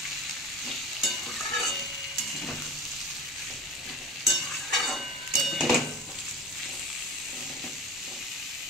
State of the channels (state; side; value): normal; both; correlation 0.34